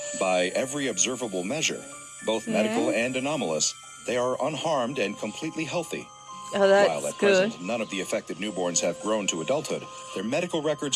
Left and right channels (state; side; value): identical; both; correlation 1.00